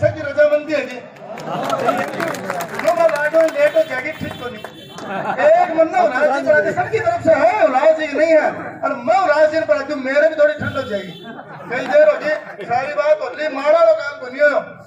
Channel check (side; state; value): both; identical; correlation 1.00